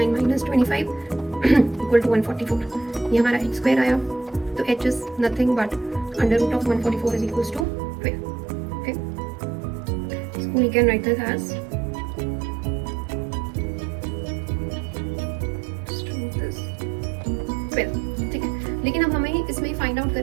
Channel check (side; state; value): left; drops out; at 7.7 s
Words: minus 25 equal to 144. ये हमारा h स्क्वायर आया. तो h is nothing but under root of 144 is equals to 12. Okay, so we can write this as 12. ठीक है, लेकिन अब हमें इसमें फाइंड आउट